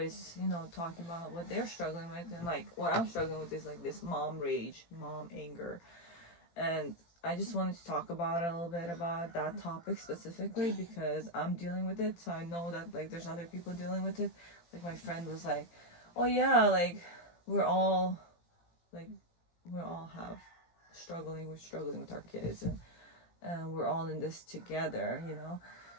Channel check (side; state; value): right; late; 18 ms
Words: talking about what they're struggling with, and like what I'm struggling with is like this mom rage, mom anger. And I just wanted to talk about a little bit about that topic specifically because I'm dealing with it, so I know that like there's other people dealing with it. Like my friend was like, well, yeah, like we're all like we all have we're struggling with our kids, and we're all in this together, you know.